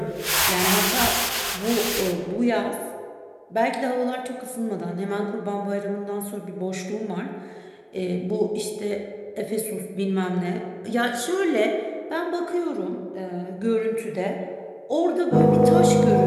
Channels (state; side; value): identical; both; correlation 1.00